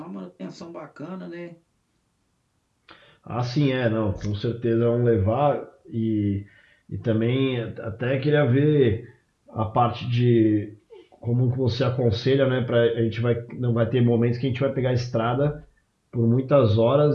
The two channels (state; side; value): identical; both; correlation 1.00